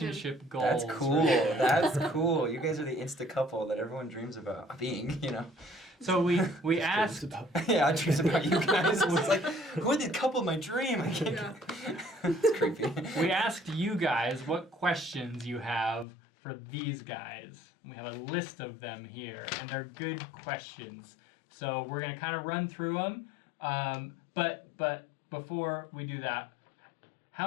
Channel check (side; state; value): right; drops out; at 16.1 s